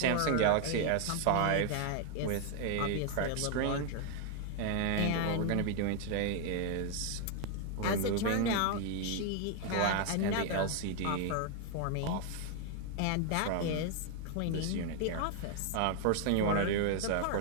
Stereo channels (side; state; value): both; different; correlation 0.00